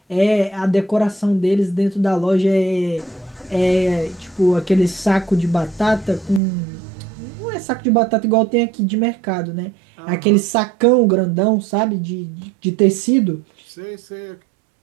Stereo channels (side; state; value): left; drops out; at 6.4 s